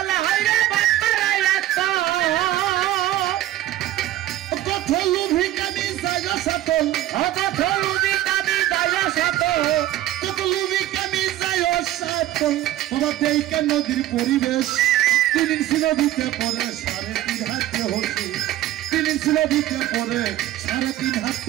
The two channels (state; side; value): quieter; left; 14.2 dB